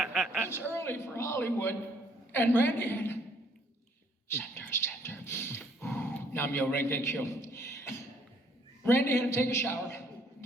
it's early for Hollywood, and Randy had center. Namyo Renge Kyo. Randy had to take a shower,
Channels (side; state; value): both; normal; correlation 0.64